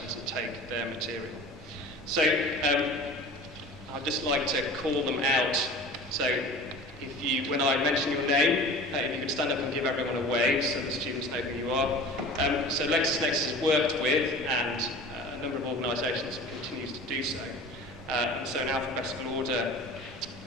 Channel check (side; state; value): both; normal; correlation 0.40